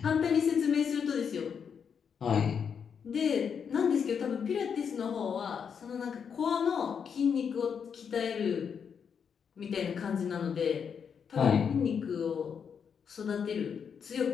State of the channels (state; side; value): quieter; right; 7.0 dB